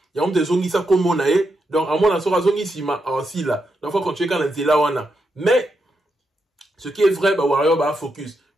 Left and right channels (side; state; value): both; normal; correlation 0.84